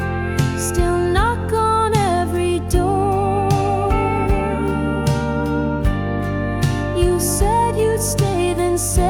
still knock on every door. You said you'd stay, then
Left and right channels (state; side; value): identical; both; correlation 1.00